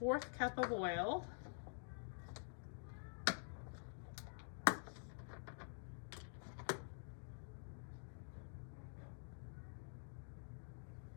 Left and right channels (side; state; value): right; silent; digital silence